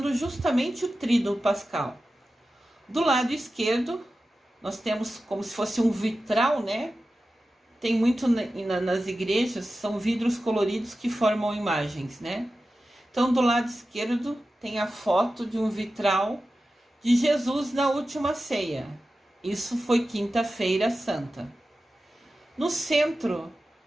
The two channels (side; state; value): both; normal; correlation 0.93